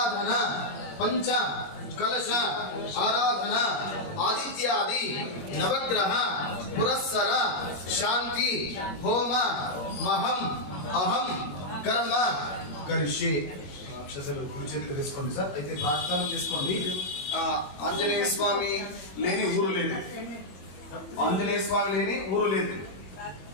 పంచ కలశ ఆరాధన ఆదిత్యాది నవగ్రహ పురస్సర శాంతి హోమ మహం అహం కర్మ కరిష్యే. అక్షసలు కుడి చేతులు తీసుకోండి సార్. అయితే ప్రార్థన చేసుకోండి. ఆంజనేయ స్వామి లేని ఊరు లేదు. ఆంజనేయ స్వామి లేని ఊరు లేదు.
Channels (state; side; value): late; right; 22 ms